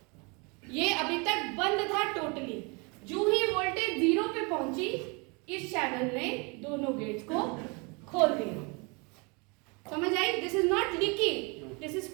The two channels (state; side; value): quieter; left; 30.6 dB